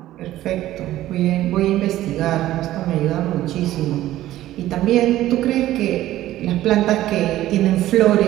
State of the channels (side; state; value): left; quieter; 14.4 dB